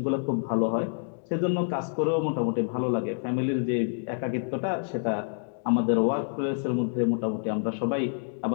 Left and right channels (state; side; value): silent; right; digital silence